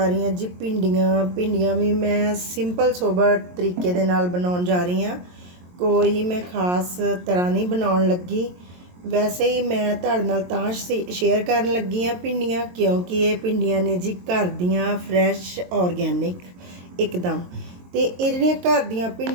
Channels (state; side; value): late; left; 22 ms